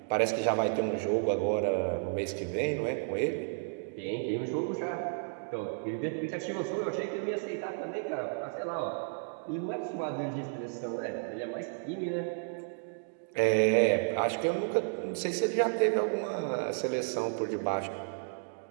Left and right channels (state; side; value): silent; left; digital silence